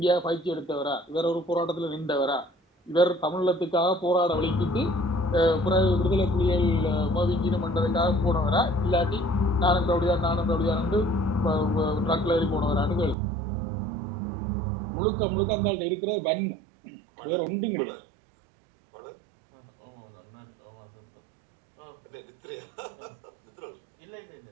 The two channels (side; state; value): left; drops out; at 13.2 s